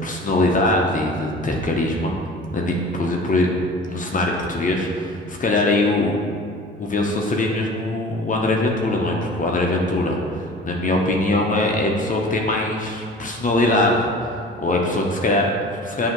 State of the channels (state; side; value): normal; both; correlation 0.41